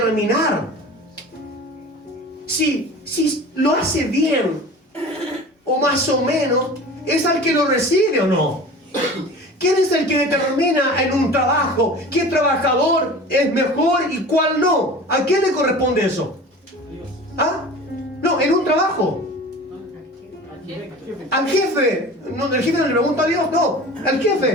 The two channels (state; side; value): normal; both; correlation 0.38